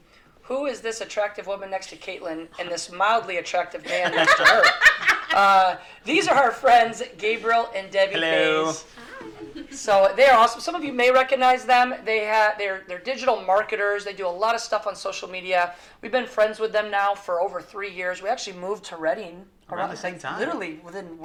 who is this attractive woman next to Caitlin and this mildly attractive man next to her? These are our friends, Gabriel and Debbie. Hello. Mays. So they are awesome. Some of you may recognize them. They're digital marketers. They do a lot of stuff on social media. We've been friends with them now for over 3 years. We actually moved to Reading around the same time. Literally within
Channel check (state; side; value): identical; both; correlation 1.00